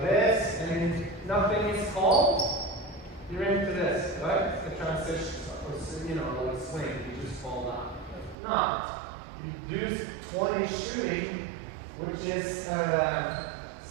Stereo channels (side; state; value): left; drops out; at 8.3 s